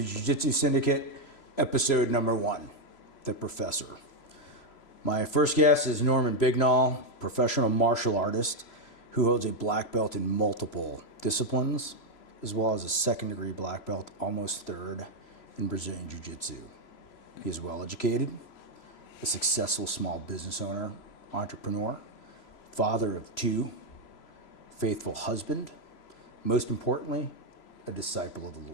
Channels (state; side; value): late; right; 3.0 ms